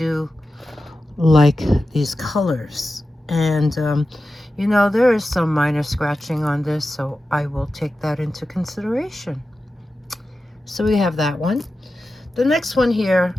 like these colors. And you know, there is some minor scratching on this, so I will take that into consideration. So we have that one. The next one here,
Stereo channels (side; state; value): both; normal; correlation 0.93